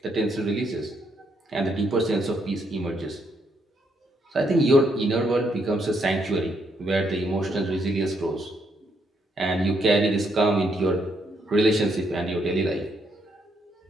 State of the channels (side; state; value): both; normal; correlation 0.75